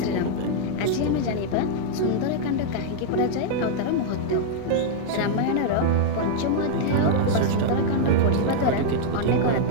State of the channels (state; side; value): different; both; correlation -0.01